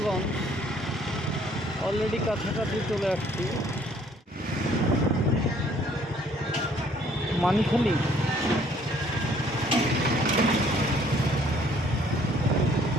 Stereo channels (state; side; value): normal; both; correlation 0.61